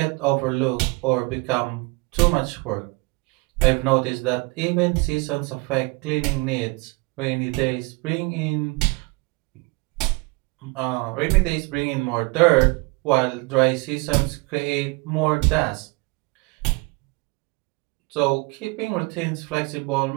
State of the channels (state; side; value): quieter; left; 27.5 dB